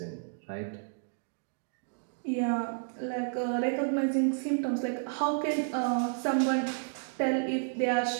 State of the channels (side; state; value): left; silent; digital silence